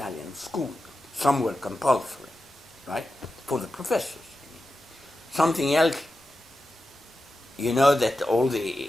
school. Some were compulsory, right, for the professors. Something else, you know that all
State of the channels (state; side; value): normal; both; correlation 0.91